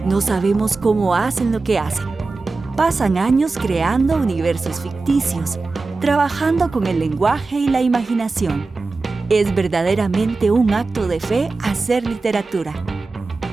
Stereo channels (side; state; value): left; quieter; 3.8 dB